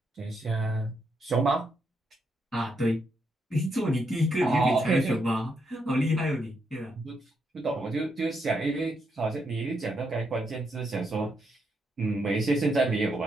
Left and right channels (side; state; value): both; normal; correlation 0.79